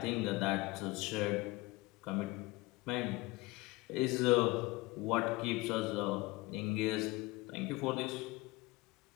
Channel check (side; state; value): right; quieter; 21.7 dB